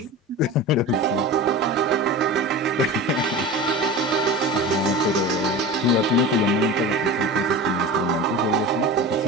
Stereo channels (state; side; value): normal; both; correlation 0.31